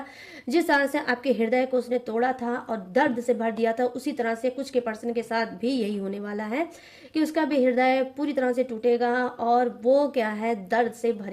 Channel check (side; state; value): both; identical; correlation 1.00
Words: जिस तरह से आपके हृदय को उसने तोड़ा था और दर्द से भर दिया था, उसी तरह से कुछ के पर्सन के साथ भी यही होने वाला है कि उसका भी हृदय पूरी तरह से टूटेगा और वो क्या है, दर्द से